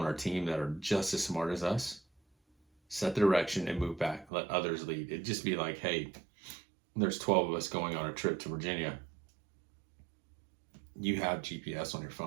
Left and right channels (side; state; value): left; drops out; at 4.3 s